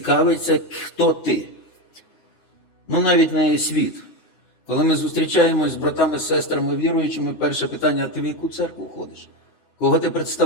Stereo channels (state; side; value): late; right; 9.4 ms